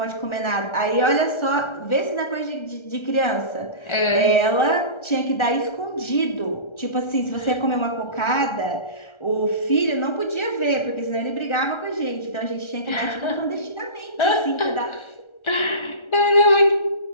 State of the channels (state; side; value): late; right; 1.3 ms